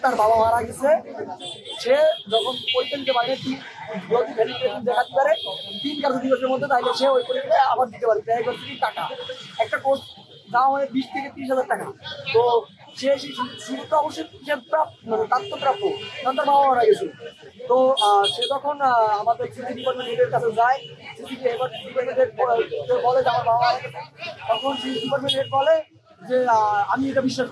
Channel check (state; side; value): identical; both; correlation 1.00